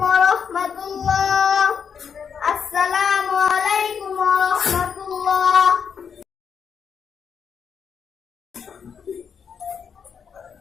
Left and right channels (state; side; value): quieter; right; 6.8 dB